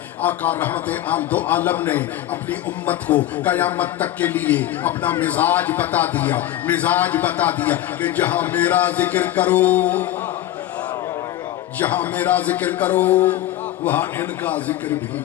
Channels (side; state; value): right; quieter; 13.5 dB